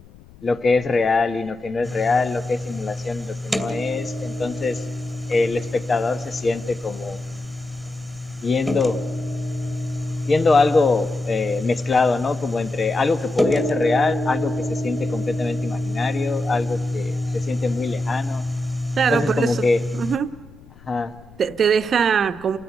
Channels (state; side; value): noise; left; rumble, 23 dB below the sound